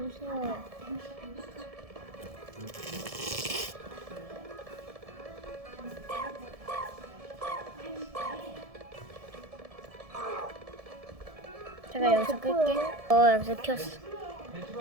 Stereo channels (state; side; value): late; left; 1.7 ms